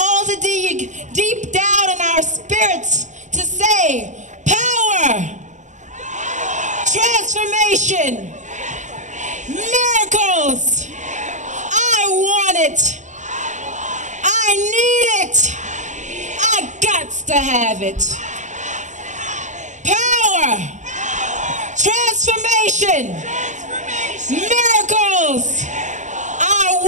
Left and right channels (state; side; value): late; left; 0.35 ms